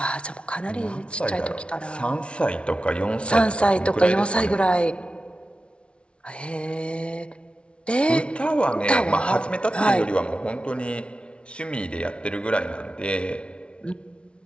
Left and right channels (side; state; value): right; late; 0.059 ms